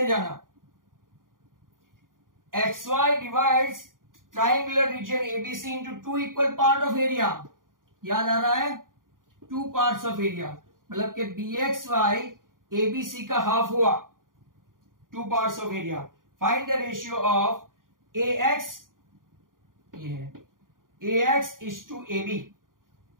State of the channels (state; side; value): late; left; 0.90 ms